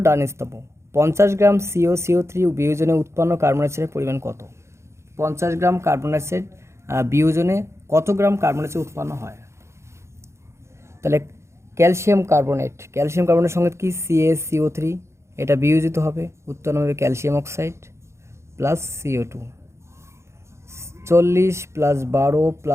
ডান স্তম্ভ। 50 গ্রাম CO3 বিয়োজনে উৎপন্ন কার্বন ডাইঅক্সাইডের পরিমাণ কত? 50 গ্রাম কার্বন ডাইঅক্সাইড বিয়োজনে কত গ্রাম কার্বন ডাইঅক্সাইড উৎপন্ন হয়? তাহলে ক্যালসিয়াম কার্বনের সঙ্গে কি CaCO3, এটা বিয়োজিত হবে, উৎপন্ন হবে ক্যালসিয়াম অক্সাইড প্লাস CO2। 40 + 12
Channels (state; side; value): late; left; 0.13 ms